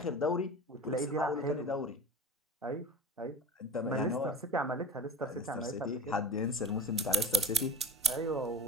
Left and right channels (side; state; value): both; normal; correlation 0.34